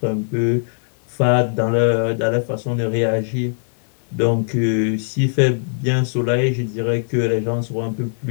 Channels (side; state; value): right; silent; digital silence